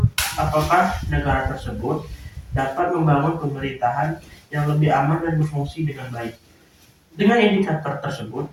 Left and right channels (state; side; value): identical; both; correlation 1.00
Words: apakah negara tersebut dapat membangun pemerintahan yang lebih aman dan berfungsi dengan baik? Dengan indikator tersebut,